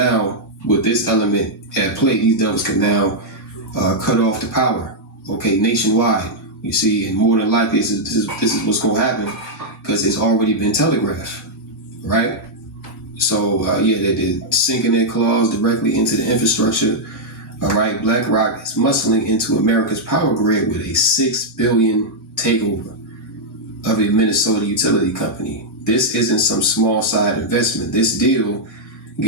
with this element at play, these devils can now cut off the power, okay, nationwide. You see, and more than likely, this is what's going to happen because it's already been telegraphed, right? So, they're sinking their claws directly into the infrastructure. All right, BlackRock is muscling into America's power grid with a $6 billion takeover of a Minnesota utility company. This isn't some small side investment. This deal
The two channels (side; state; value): both; normal; correlation -0.05